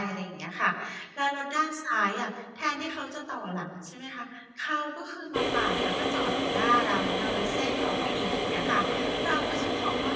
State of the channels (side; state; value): both; identical; correlation 1.00